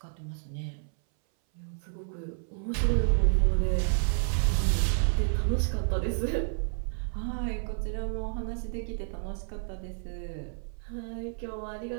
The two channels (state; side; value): silent; left; 58 dB below the other